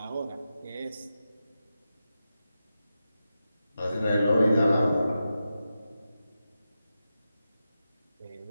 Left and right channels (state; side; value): inverted; both; correlation -0.90